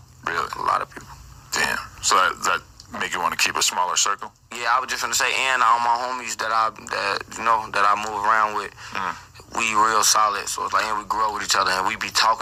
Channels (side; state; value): both; identical; correlation 1.00